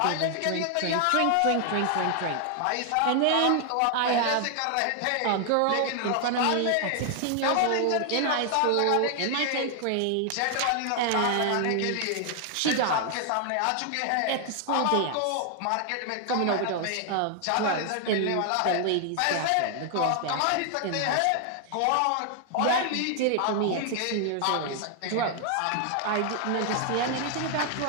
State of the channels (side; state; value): both; different; correlation 0.00